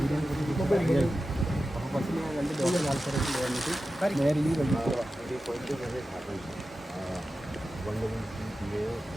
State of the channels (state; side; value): normal; both; correlation 0.93